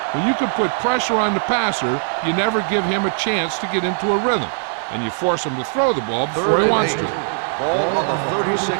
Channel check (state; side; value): silent; left; 66 dB below the other